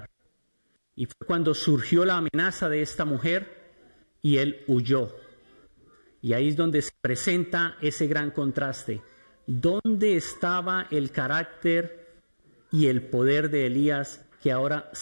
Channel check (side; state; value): both; inverted; correlation -1.00